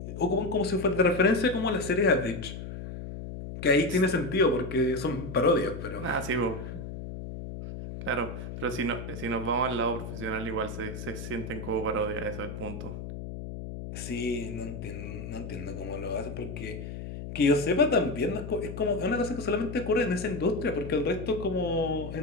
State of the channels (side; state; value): left; noise; hum, 8 dB below the sound